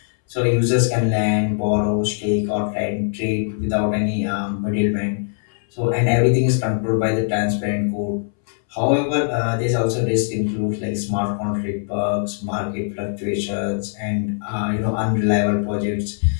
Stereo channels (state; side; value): silent; right; 64 dB below the other